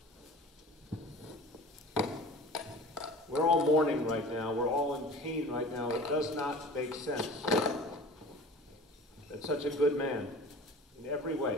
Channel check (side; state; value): both; normal; correlation 0.39